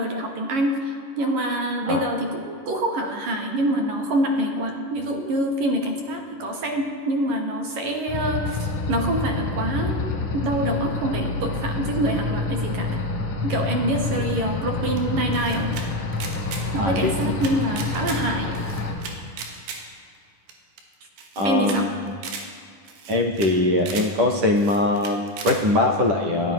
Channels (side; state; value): left; late; 11 ms